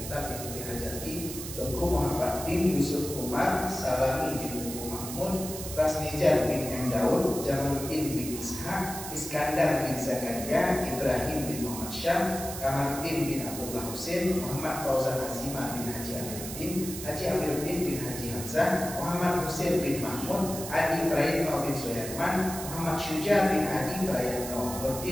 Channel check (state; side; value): noise; right; hiss, 9 dB below the sound